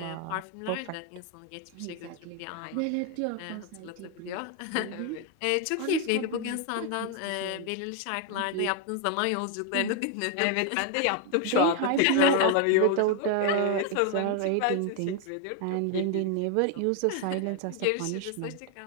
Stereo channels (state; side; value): different; both; correlation 0.01